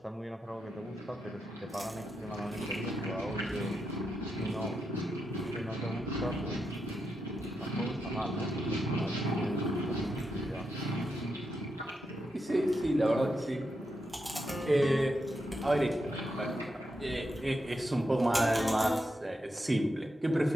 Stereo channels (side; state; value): both; normal; correlation 0.86